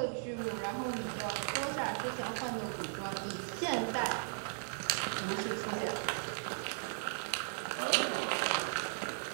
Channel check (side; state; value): left; silent; 53 dB below the other